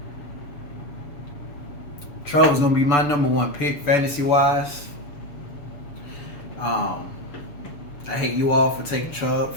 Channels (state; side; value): late; right; 6.9 ms